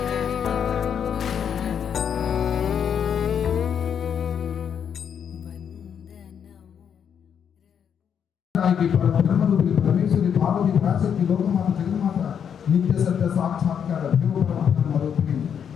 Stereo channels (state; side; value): quieter; right; 8.0 dB